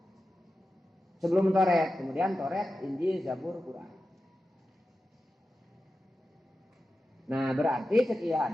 Sebelum Toret, kemudian Toret, Injil, Zabur, Quran. Nah, berarti sekieu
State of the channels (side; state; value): both; normal; correlation 0.92